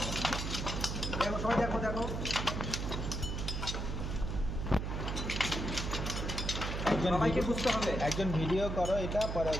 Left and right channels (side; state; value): right; noise; hum, 3 dB below the sound